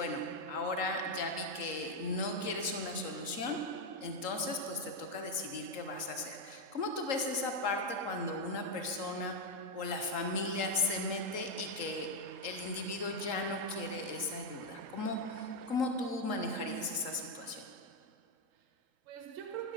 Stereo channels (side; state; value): left; late; 3.8 ms